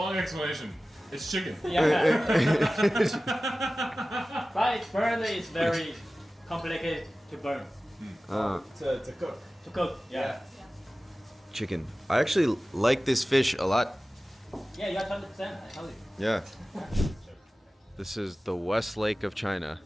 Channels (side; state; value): both; normal; correlation 0.96